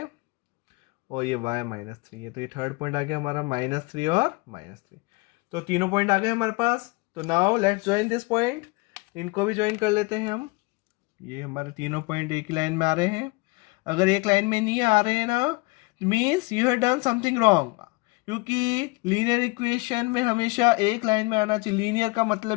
और ये y -3 है। तो ये थर्ड पॉइंट आ गया हमारा -3 और -3। तो तीनों पॉइंट आ गए हमारे पास। तो now let's join this point, इनको भी ज्वाइन कर लेते हैं हम। ये हमारे तीनों पॉइंट एक ही लाइन में आ रहे हैं। अगर एक लाइन में नहीं आ रहे हैं ना, means you have done something wrong, क्योंकि लीनियर इक्वेशन में हमेशा एक लाइन में आना चाहिए। लीनियर का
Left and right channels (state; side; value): quieter; right; 26.0 dB